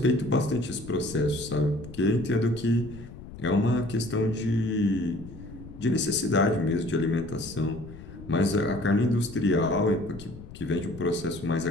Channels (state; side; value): noise; left; rumble, 15 dB below the sound